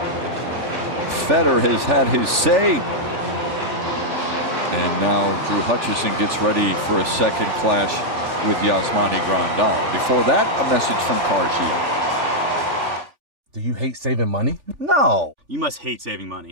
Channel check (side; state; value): left; late; 3.4 ms